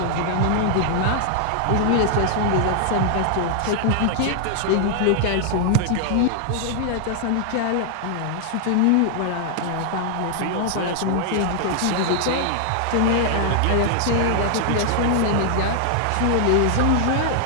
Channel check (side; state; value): both; different; correlation -0.01